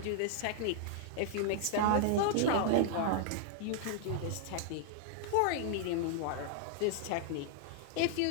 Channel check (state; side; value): different; both; correlation -0.01